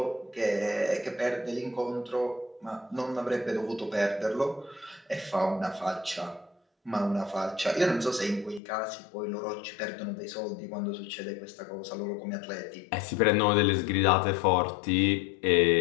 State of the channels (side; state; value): right; drops out; at 8.6 s